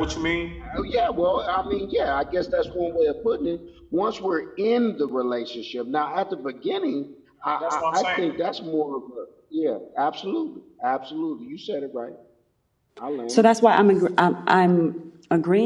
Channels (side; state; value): both; identical; correlation 1.00